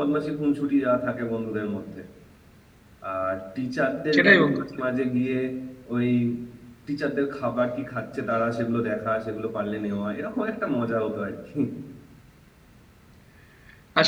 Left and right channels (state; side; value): identical; both; correlation 1.00